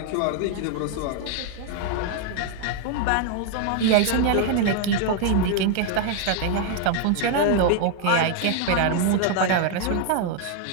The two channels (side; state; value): both; different; correlation 0.00